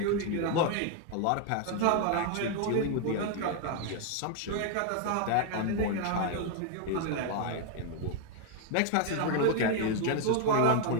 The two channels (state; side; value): different; both; correlation 0.00